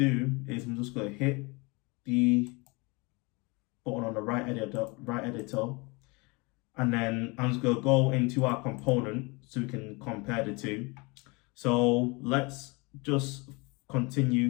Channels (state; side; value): quieter; right; 27.4 dB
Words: is I'm just going to hit the button on the right editor, and then I'm just going to go into our component so we can compare the two. So let's just continue